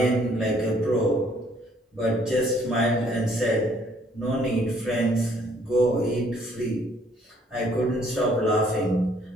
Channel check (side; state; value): both; normal; correlation 0.63